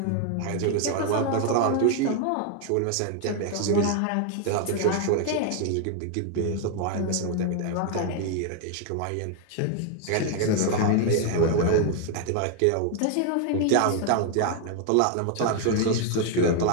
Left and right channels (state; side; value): different; both; correlation 0.00